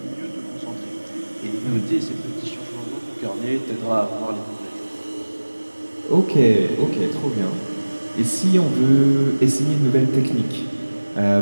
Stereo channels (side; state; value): both; inverted; correlation -1.00